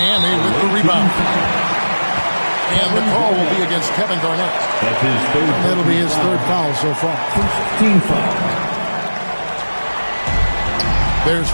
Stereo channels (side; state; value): both; inverted; correlation -1.00